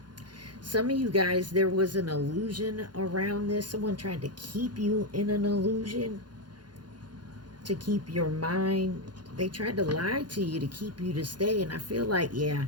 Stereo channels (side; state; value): left; late; 0.70 ms